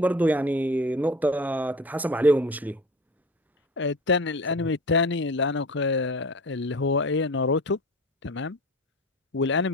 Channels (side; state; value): both; normal; correlation 0.33